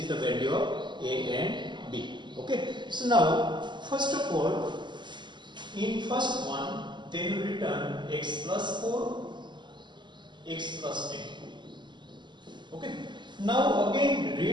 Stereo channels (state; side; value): late; left; 0.22 ms